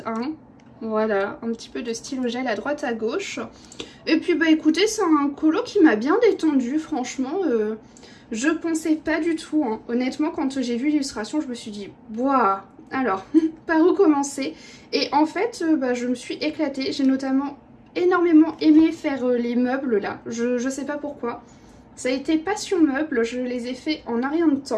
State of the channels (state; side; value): identical; both; correlation 1.00